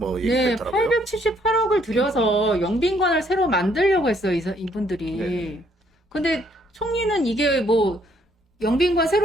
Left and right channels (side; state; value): both; normal; correlation 0.67